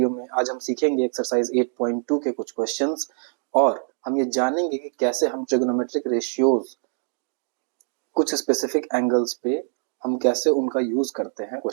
में, आज हम सीखेंगे एक्सरसाइज 8.2 के कुछ क्वेश्चंस और हम ये जानेंगे कि कैसे हम ट्रिग्नोमेट्रिक रेशियोज कुछ स्पेसिफिक एंगल्स पे हम कैसे उनका यूज करते हैं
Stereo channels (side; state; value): left; silent; digital silence